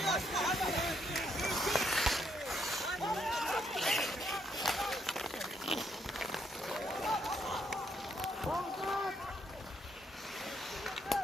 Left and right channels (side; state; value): both; normal; correlation 0.74